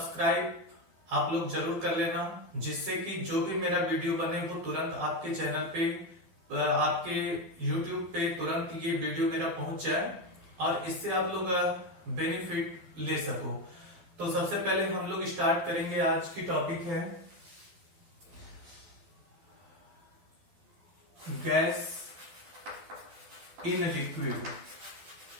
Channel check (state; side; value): late; left; 12 ms